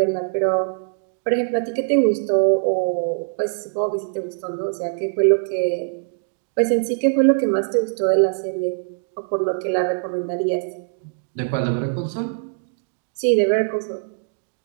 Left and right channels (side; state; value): left; silent; digital silence